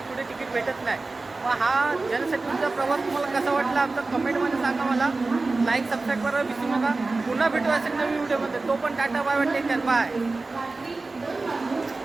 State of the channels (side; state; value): left; quieter; 3.5 dB